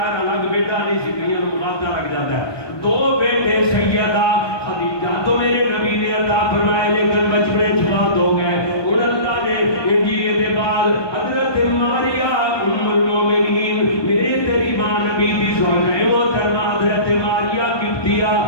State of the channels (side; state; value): right; late; 1.2 ms